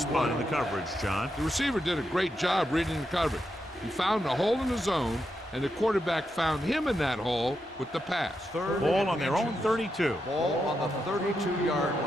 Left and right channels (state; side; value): normal; both; correlation 0.85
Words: spot in the coverage, John. The receiver did a great job reading the coverage. He found a hole in the zone, and the quarterback found him in that hole with the pass. Ball on their own 32. Ball on the 32-yard